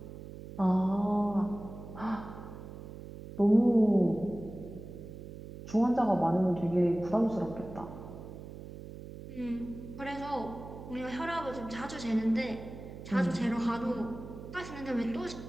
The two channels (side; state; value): right; noise; hum, 12 dB below the sound